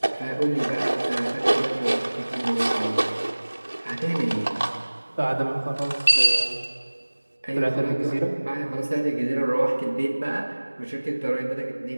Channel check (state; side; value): inverted; both; correlation -1.00